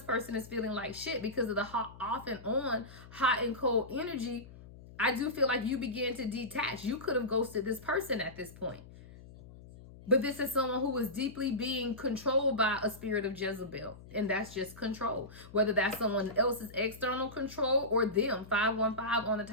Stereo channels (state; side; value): noise; left; hum, 18 dB below the sound